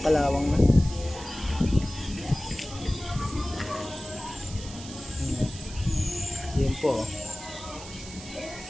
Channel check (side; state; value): right; noise; hiss, 14 dB below the sound